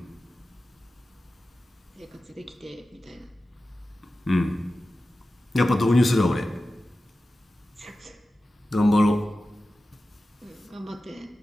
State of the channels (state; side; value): normal; both; correlation 0.94